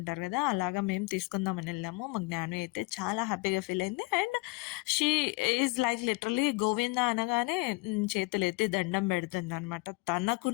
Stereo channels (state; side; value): quieter; right; 25.1 dB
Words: కదా, అలాగా మేము తీసుకుందామని వెళ్ళాము. మా జ్ఞానం అయితే చాలా హ్యాపీగా ఫీల్ అయింది. And she is like literally Govinda అనగానే చేతులు ఎత్తి దండం పెడుతుంది అనమాట.